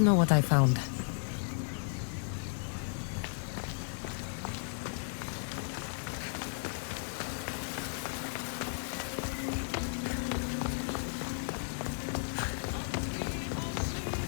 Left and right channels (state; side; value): silent; right; 55 dB below the other